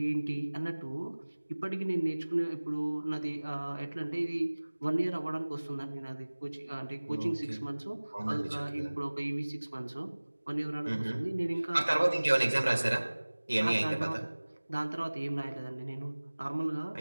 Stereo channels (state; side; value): inverted; both; correlation -1.00